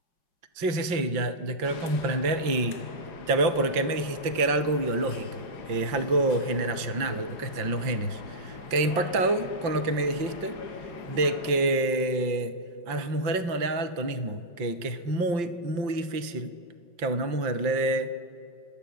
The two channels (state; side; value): late; left; 5.8 ms